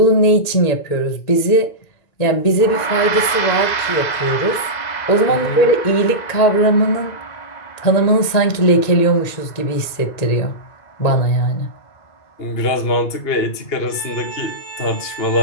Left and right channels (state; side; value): late; right; 2.0 ms